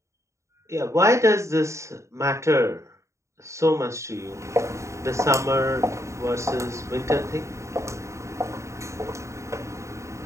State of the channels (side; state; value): left; late; 0.14 ms